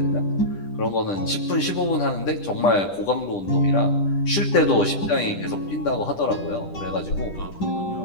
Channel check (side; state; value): right; late; 10 ms